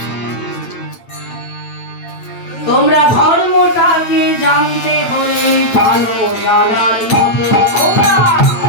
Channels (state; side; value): late; right; 8.9 ms